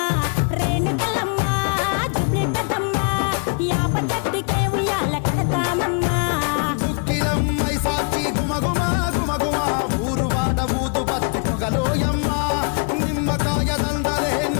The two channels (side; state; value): right; quieter; 38.7 dB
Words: రేణుకెళ్ళమ్మ జుబ్లి పెద్దమ్మ యాప చెట్టుకే ఉయ్యాల కడతామమ్మ దుక్కిలమ్మై సాచి గుమగుమ గుమగుమ ఊరు వాడ ఊదు బత్తి పొగలోయమ్మ నిమ్మకాయ దండలే